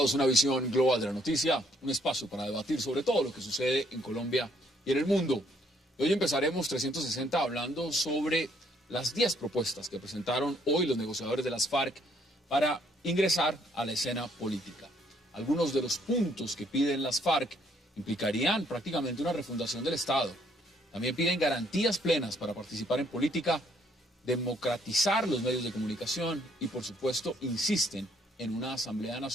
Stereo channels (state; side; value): normal; both; correlation 0.67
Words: una visión global de la noticia, un espacio para debatir sobre todo lo que sucede en Colombia y en el mundo. Hoy empezaremos 360 hablando sobre las 10 propuestas que presentaron hoy los negociadores de las FARC para ingresar a la escena política. Algunos de los puntos que piden las FARC implicarían prácticamente una refundación del Estado. También piden garantías plenas para participar en política, democratizar los medios de comunicación y, por supuesto, insisten en una Asamblea